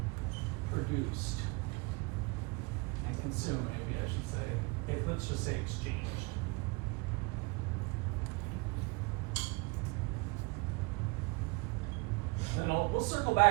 produced and consumed, maybe I should say. Let's just say exchanged. And we'll circle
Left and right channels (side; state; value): left; quieter; 27.2 dB